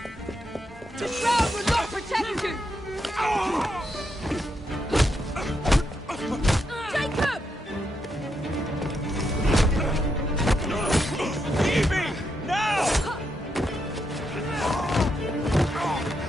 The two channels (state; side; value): normal; both; correlation 0.81